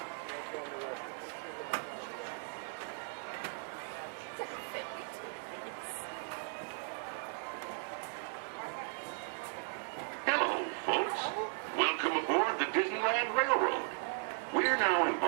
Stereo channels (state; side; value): silent; left; 53 dB below the other